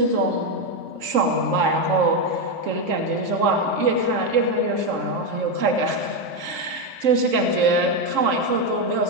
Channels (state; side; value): late; left; 3.7 ms